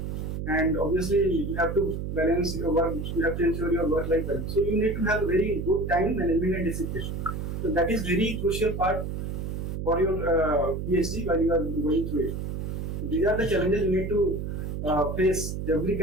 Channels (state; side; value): noise; right; hum, 4 dB below the sound